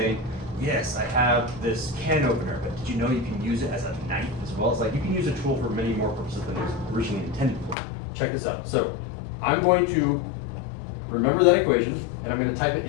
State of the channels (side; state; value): right; drops out; at 7.8 s